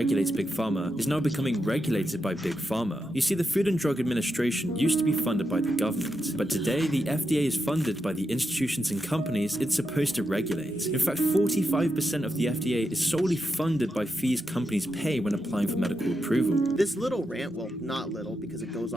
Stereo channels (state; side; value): normal; both; correlation 0.86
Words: Big Pharma, is now becoming regulated by Big Pharma. You see, the Food and Drug Administration used to be funded by the government, but today the FDA is funded by the institutions and companies it's supposed to regulate. In fact, 45% of the FDA is solely funded by fees companies pay when applying for medical approval. This little rant, well, not little because it goes